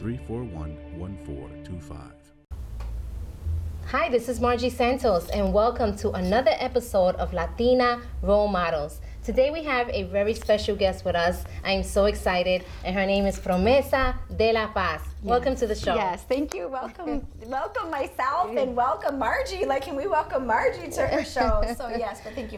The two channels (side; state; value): both; identical; correlation 1.00